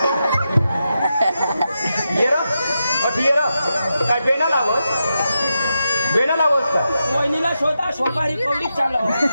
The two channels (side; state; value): both; inverted; correlation -0.87